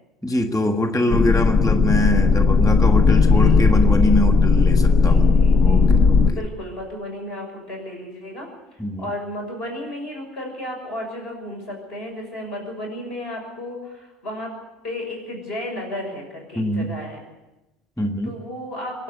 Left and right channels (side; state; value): right; quieter; 3.3 dB